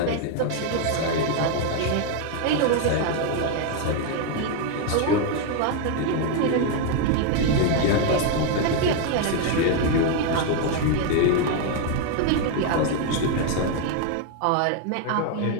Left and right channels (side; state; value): both; different; correlation 0.01